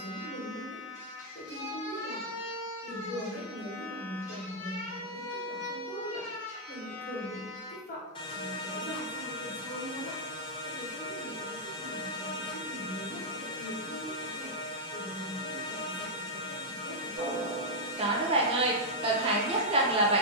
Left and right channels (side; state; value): both; normal; correlation -0.07